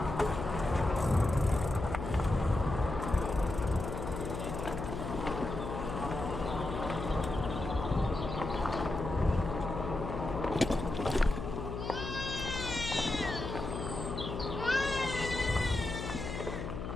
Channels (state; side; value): noise; left; hum, 5 dB below the sound